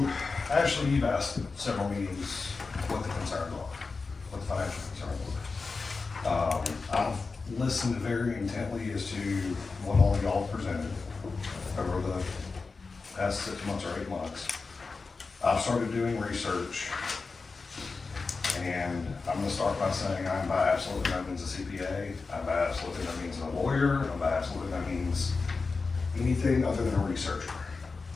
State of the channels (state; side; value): quieter; right; 4.3 dB